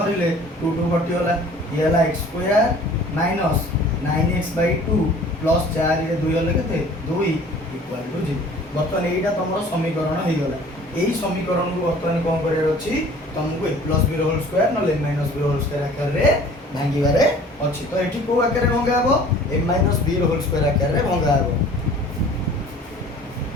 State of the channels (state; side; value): normal; both; correlation 0.49